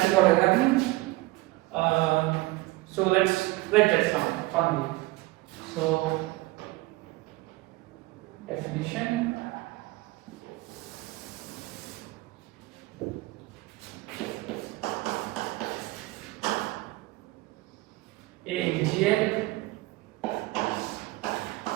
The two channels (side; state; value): left; quieter; 20.3 dB